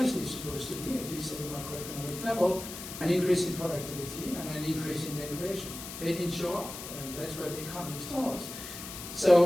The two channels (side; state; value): left; noise; hiss, 10 dB below the sound